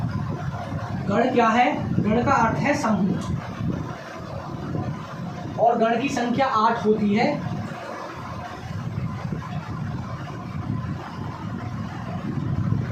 गण क्या है? गण का अर्थ है समूह, और गण की संख्या 8 होती है।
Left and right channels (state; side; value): identical; both; correlation 1.00